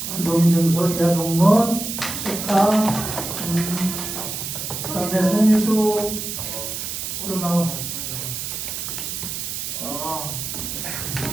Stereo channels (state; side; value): noise; right; hiss, 5 dB below the sound